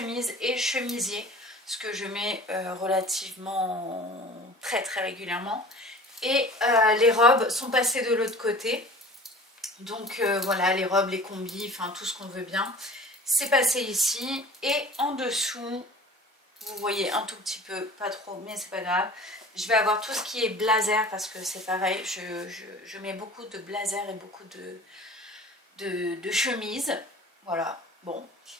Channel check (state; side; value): normal; both; correlation 0.43